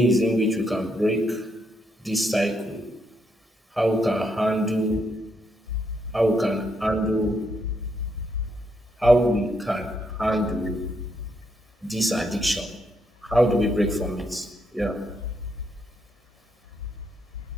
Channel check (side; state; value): both; normal; correlation 0.77